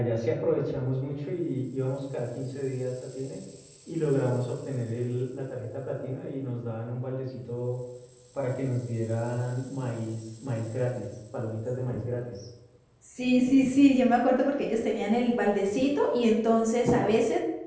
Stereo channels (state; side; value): identical; both; correlation 1.00